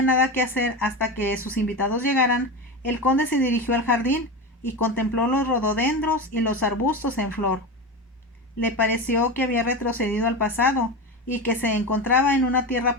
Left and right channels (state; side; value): normal; both; correlation 0.21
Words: nada que hacer hasta que sus invitados llegaran, el conde se dirigió al jardín y contempló los rododendros y los arbustos en flor. Le pareció que había retrocedido al pasado y que se encontraba en una